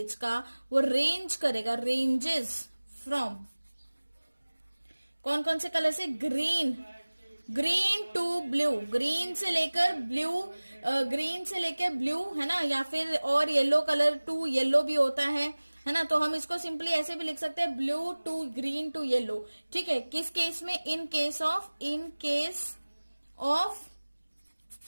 का वो रेंज करेगा, रेंजेस फ्रॉम कौन कौन से कलर से, ग्रीन टू ब्लू, ग्रीन से लेकर ब्लू, है ना, या फिर और येलो कलर टू येलो भी होता है ना। तो हम इसको सिंपली ऐसे भी लिख सकते हैं, blue to green to yellow. ठीक है, किस केस में, in case of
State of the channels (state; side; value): inverted; both; correlation -1.00